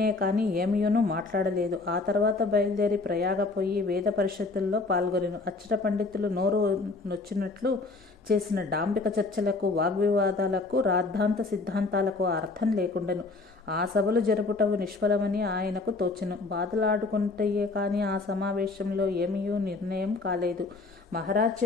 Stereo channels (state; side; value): quieter; right; 3.6 dB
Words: కానీ ఏమీయును మాట్లాడలేదు. ఆ తర్వాత బయలుదేరి ప్రయాగపోయి వేద పరిషత్తుల్లో పాల్గొనెను. అచ్చట పండితులు నోరు నొచ్చినట్లు చేసిన డాంబిక చర్చలకు, వాగ్వివాదాలకు, రాద్ధాంత సిద్ధాంతాలకు అర్థం లేకుండెను. ఆ సభలు జరుపుటవు నిష్ఫలమని ఆయనకు తోచెను. బాధలాడుకుంటయే కానీ ఆ సమావేశంలో ఏమీయూ నిర్ణయం కాలేదు. మహారాజ్